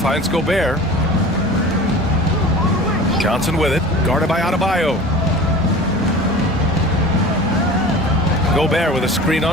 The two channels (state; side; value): normal; both; correlation 0.39